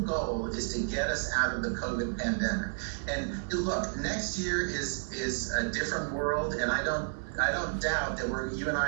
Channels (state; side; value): silent; left; digital silence